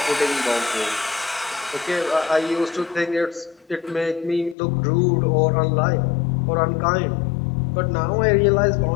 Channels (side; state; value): right; drops out; at 4.5 s